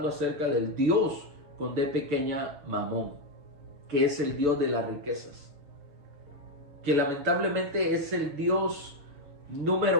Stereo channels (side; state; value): left; late; 7.0 ms